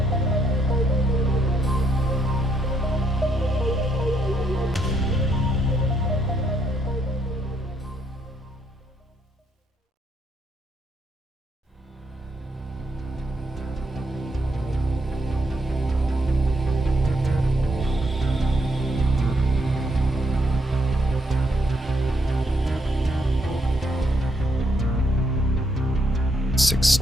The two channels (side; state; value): both; normal; correlation 0.74